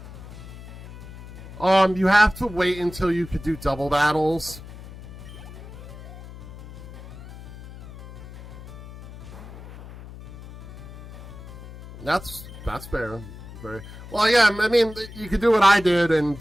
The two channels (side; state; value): left; noise; hum, 15 dB below the sound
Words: You have to wait until you could do double battles. That's fair. Very well. Yeah, I mean, you could do what I did and